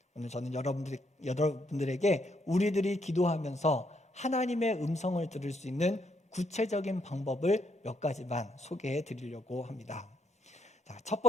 오늘 저는 여러분들에게 우리들이 기도하면서 하나님의 음성을 들을 수 있는 구체적인 방법을 몇 가지만 소개해 드리려고 합니다. 자, 첫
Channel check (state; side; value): normal; both; correlation 0.74